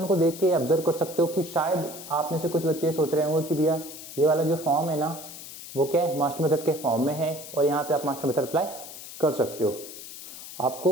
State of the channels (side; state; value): left; noise; hiss, 13 dB below the sound